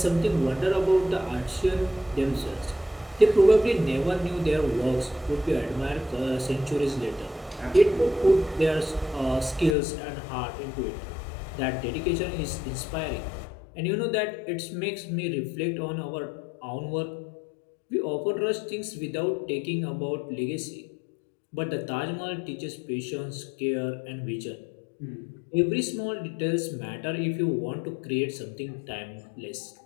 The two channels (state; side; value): drops out; right; at 9.8 s